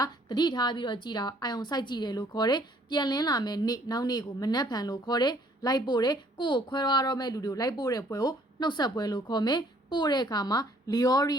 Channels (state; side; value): normal; both; correlation 0.60